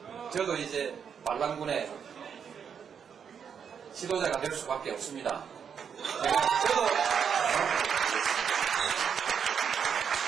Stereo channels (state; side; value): quieter; left; 7.3 dB